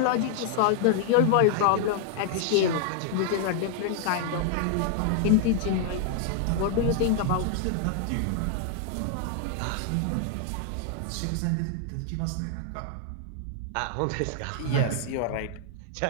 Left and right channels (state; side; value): different; both; correlation 0.00